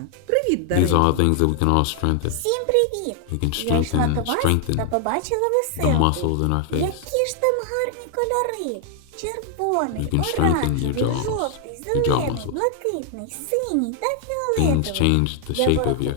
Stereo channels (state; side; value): different; both; correlation 0.00